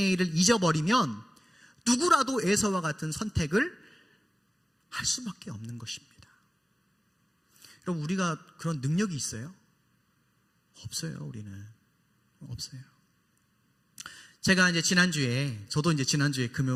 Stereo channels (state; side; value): normal; both; correlation 0.97